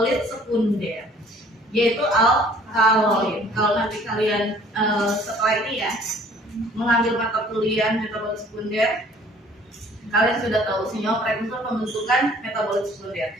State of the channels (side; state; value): both; normal; correlation 0.55